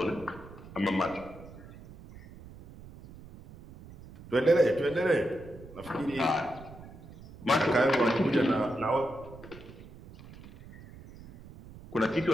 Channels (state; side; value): noise; right; rumble, 18 dB below the sound